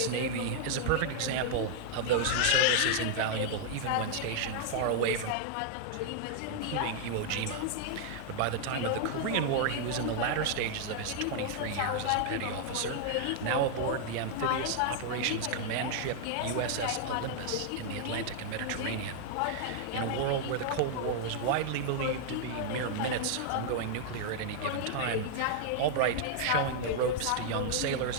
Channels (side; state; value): both; different; correlation 0.00